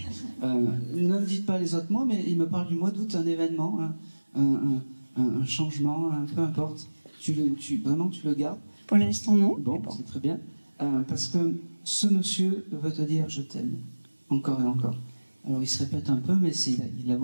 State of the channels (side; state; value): both; inverted; correlation -1.00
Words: ne me dites pas les autres mois, mais il me parle du mois d'août, un événement, un changement, peu importe. Vraiment, tu le gardes? Pour l'instant, non. Bon, c'est très bien. Parce que ce monsieur veut te dire je t'aime. Encore et encore. Alors il se répète un peu, mais il a